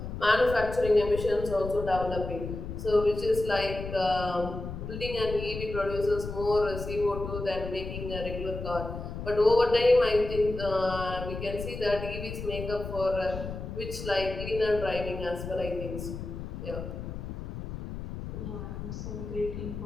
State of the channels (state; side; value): noise; left; rumble, 8 dB below the sound